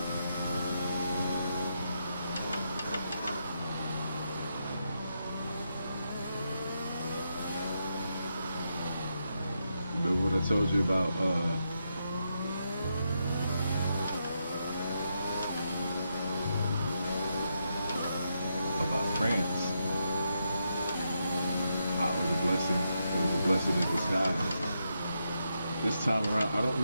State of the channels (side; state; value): both; inverted; correlation -0.83